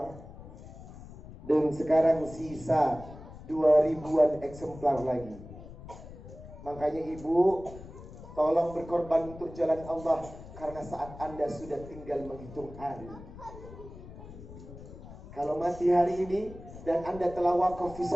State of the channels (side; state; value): left; noise; rumble, 15 dB below the sound